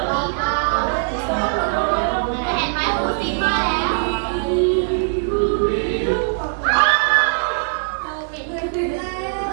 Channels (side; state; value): left; silent; digital silence